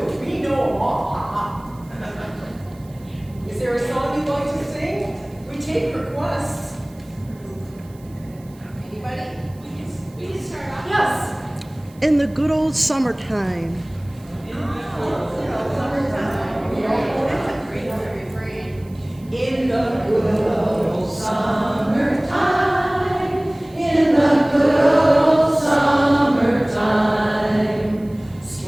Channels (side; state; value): right; noise; hiss, 28 dB below the sound